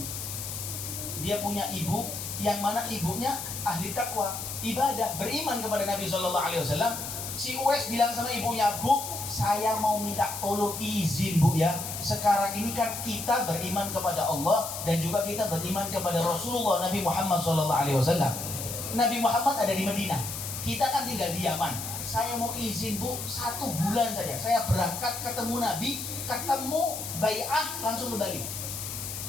Dia punya ibu yang mana ibunya ahli takwa, ibadah, beriman kepada Nabi Shallallahu Alaihi Wasallam. Si Uwais bilang sama ibunya, "Bu, saya mau minta tolong izin Bu ya. Sekarang ini kan kita beriman kepada Allah dan juga kita beriman kepada Rasulullah Nabi Muhammad Shallallahu Alaihi Wasallam. Nabi Muhammad ada di Madinah, kita kan tinggal di Yaman. Saya mau izin Bu, 1 bulan saja. Saya berangkat ketemu Nabi, ketemu bai'ah langsung kembali.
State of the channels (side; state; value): left; noise; hiss, 6 dB below the sound